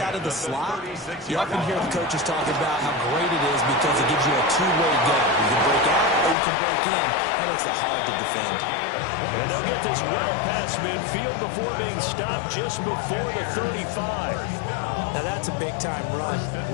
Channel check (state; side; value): drops out; right; at 6.4 s